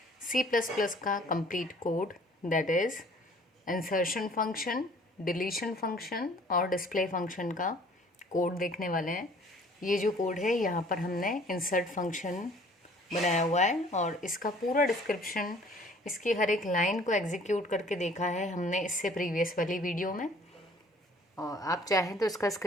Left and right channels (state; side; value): normal; both; correlation 0.54